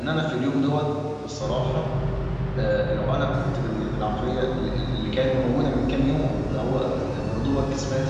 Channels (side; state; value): both; identical; correlation 1.00